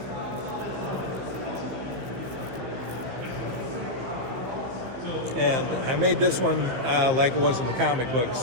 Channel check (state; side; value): late; left; 16 ms